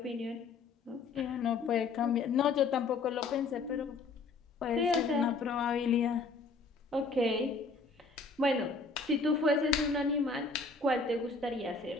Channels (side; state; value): right; quieter; 4.2 dB